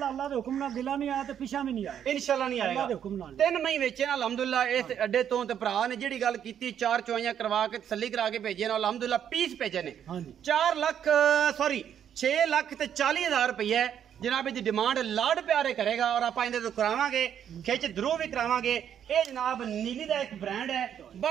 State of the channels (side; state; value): left; quieter; 9.2 dB